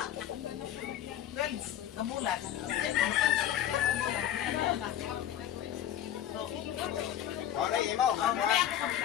12 ang bulan. Okay, imo. Kaya ako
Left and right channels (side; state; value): right; quieter; 11.1 dB